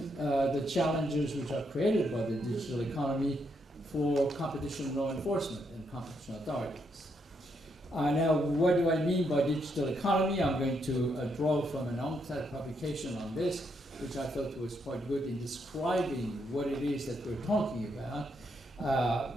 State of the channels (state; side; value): normal; both; correlation 0.77